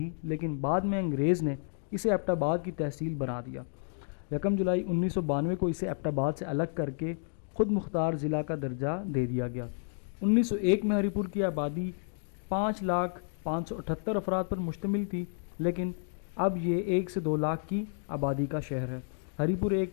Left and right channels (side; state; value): right; silent; 57 dB below the other